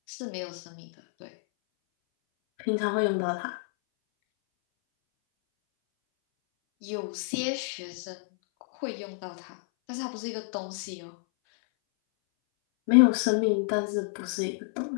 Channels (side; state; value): right; silent; 59 dB below the other